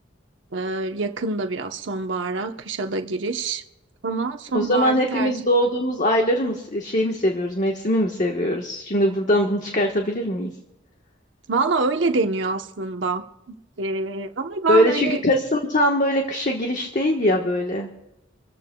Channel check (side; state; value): both; normal; correlation 0.24